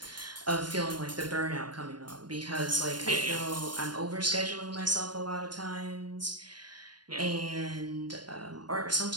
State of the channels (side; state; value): left; late; 0.71 ms